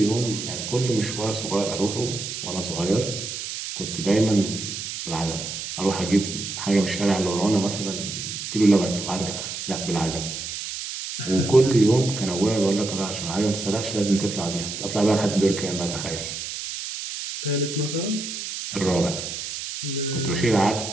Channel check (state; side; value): noise; right; hiss, 6 dB below the sound